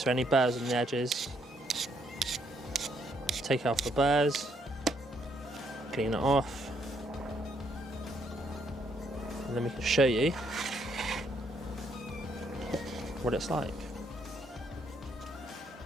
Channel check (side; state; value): both; normal; correlation 0.72